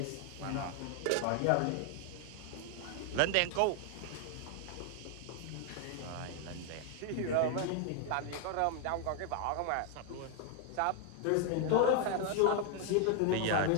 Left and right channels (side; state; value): both; different; correlation 0.00